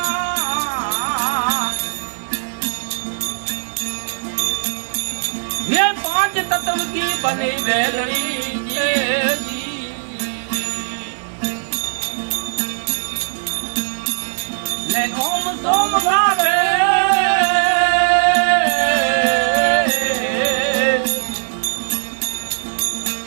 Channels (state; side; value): silent; left; digital silence